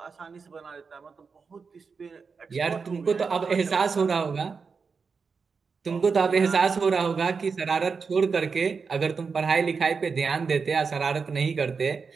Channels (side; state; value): left; quieter; 5.2 dB